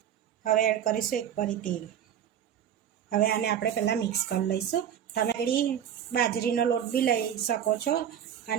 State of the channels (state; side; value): quieter; left; 9.5 dB